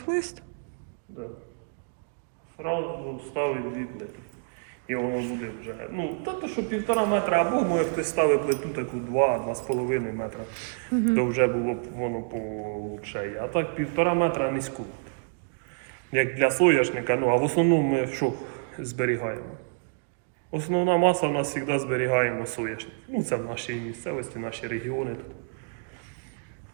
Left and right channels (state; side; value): silent; left; digital silence